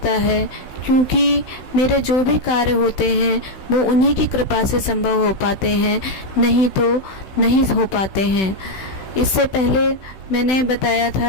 है, क्योंकि मेरे जो भी कार्य होते हैं वो उन्हीं की कृपा से संभव हो पाते हैं, नहीं तो नहीं हो पाते हैं। इससे पहले मैंने बताया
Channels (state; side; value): late; right; 16 ms